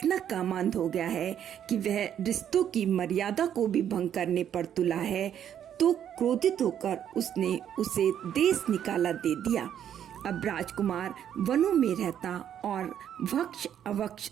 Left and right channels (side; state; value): left; quieter; 9.7 dB